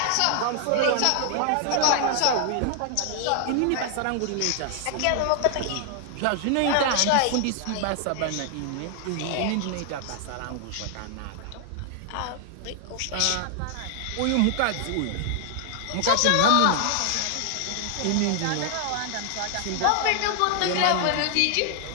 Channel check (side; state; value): both; different; correlation 0.00